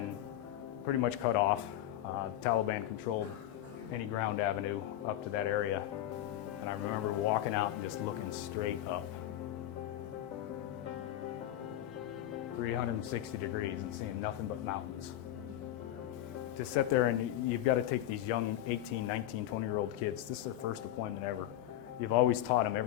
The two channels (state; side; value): quieter; right; 12.8 dB